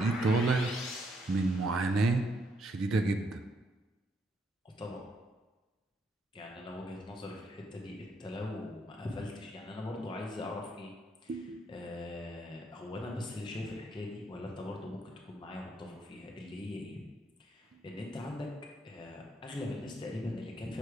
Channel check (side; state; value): both; normal; correlation 0.74